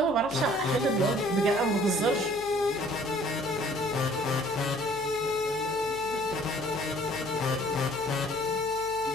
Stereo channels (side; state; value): left; noise; hum, 20 dB below the sound